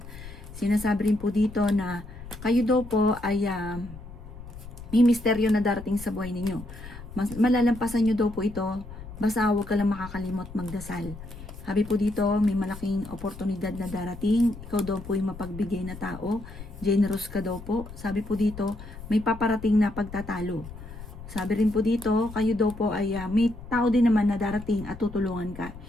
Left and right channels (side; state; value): left; noise; rumble, 14 dB below the sound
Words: Sinasabi rin po dito na kayo daw po ay may misteryo na darating sa buhay ninyo. Malalampasan nyo daw po ito, basta huwag ka lang makakalimot magdasal. Sabi po dito, may malaking oportunidad na darating, ikaw daw po yung mapagbigay na tao, generous ka daw po. Sabi po dito, may paparating na pagtatalo. Sabi rin po dito, kayo daw po ay may tao din naman na darating at tutulungan ka.